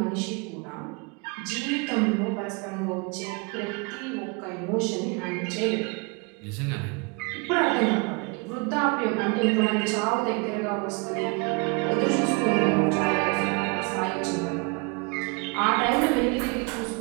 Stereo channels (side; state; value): left; quieter; 29.8 dB